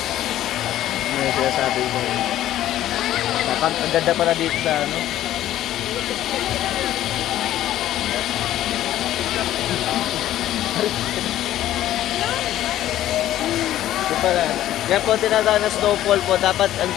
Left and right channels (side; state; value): right; quieter; 13.2 dB